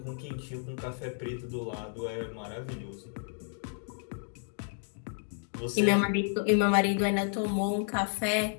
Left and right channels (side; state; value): right; silent; digital silence